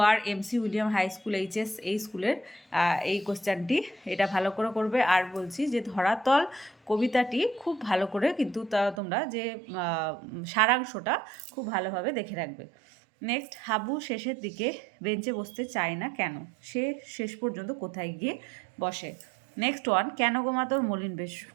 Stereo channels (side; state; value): left; drops out; at 9.0 s